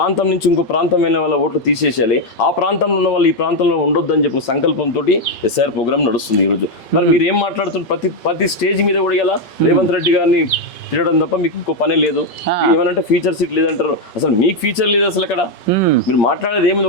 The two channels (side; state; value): right; late; 5.3 ms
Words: నుంచి ఇంకో ప్రాంతం వెళ్ళిన వాళ్ళ ఓట్లు తీసేసేయాలి, ఆ ప్రాంతంలో ఉన్న వాళ్ళు ఈ ప్రాంతంలో ఉండొద్దని చెప్పి సంకల్పంతో ఎస్ఐఆర్ ప్రోగ్రామ్ నడుస్తుంది ఈ రోజు. మరి మీరు ఏం మాట్లాడుతున్నారు? ప్రతి స్టేజ్ మీద కూడా ఇలా రేవంత్ రెడ్డి గారిని తినడం తప్ప మీకు ఇంకో పనే లేదు. ఏమనంటే ఫీచర్ సీట్ లేదంటారు, అసలు మీకు ఫీచర్ లేదు అసలు. అక్కడ మీరు మాట్లాడేది